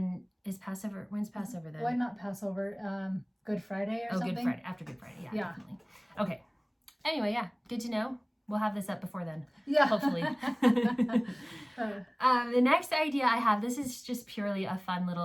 is Passover. When's Passover then? Why not Passover? Good Friday or something? Good Friday. After Good Friday. Yeah, definitely. Okay. Anyway, good to know. We'll have this up before then. Yeah. Hopefully. The next idea I have, this is just purely a fun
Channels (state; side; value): identical; both; correlation 1.00